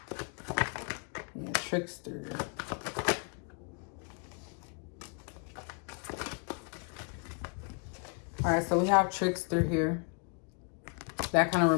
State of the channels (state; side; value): quieter; right; 38.7 dB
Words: Yeah, trickster. All right, so we have trickster here. That kind of